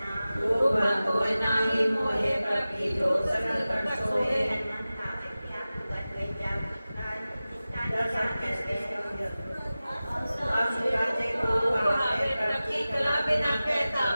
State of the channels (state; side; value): inverted; both; correlation -0.96